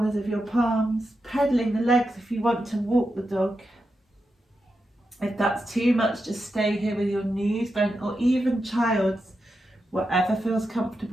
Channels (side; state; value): both; normal; correlation 0.88